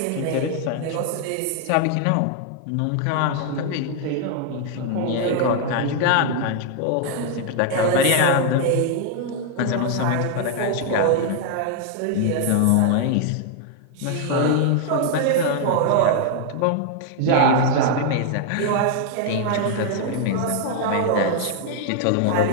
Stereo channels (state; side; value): different; both; correlation 0.00